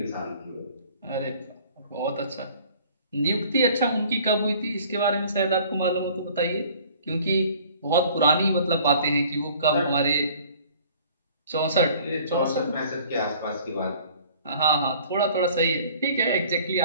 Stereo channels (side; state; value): both; inverted; correlation -0.51